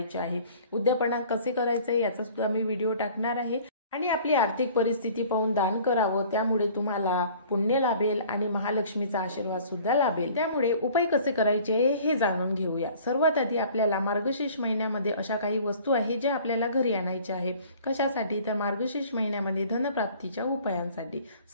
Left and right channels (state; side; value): inverted; both; correlation -0.50